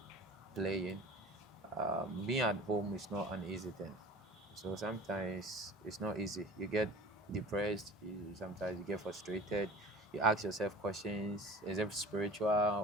playing, being at home is not an easy thing. So sometimes it's not easy. You get depressed, sometimes you get frustrated, you ask yourself questions, is it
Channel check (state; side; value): normal; both; correlation 0.40